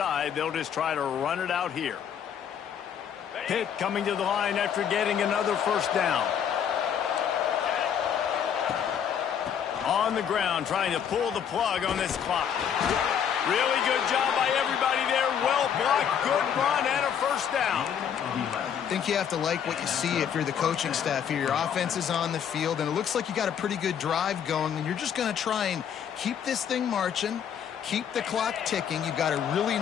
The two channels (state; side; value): quieter; right; 8.4 dB